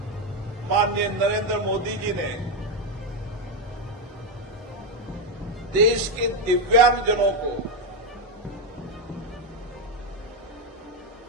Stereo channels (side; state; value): both; normal; correlation 0.07